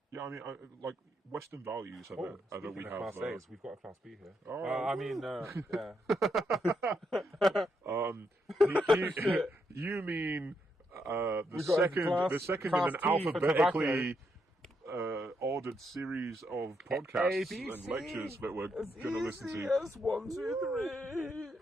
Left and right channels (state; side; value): normal; both; correlation 0.79